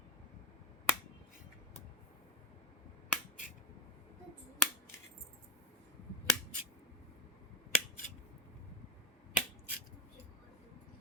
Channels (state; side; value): normal; both; correlation 0.16